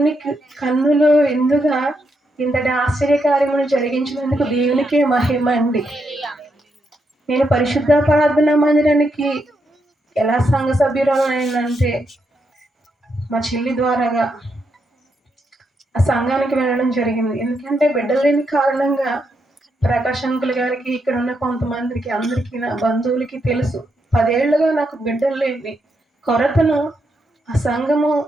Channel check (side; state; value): both; normal; correlation 0.81